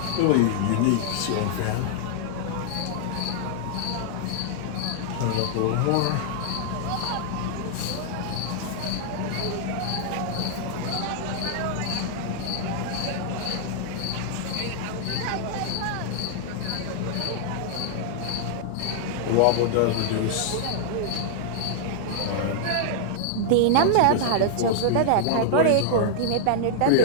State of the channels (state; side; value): different; both; correlation -0.01